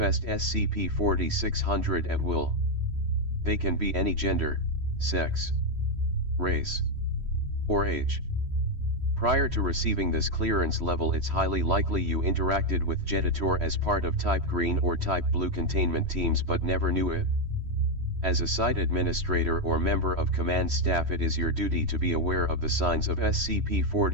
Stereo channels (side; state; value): left; late; 3.1 ms